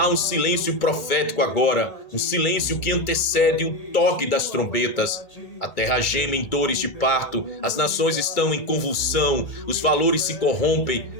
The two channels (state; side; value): late; right; 2.2 ms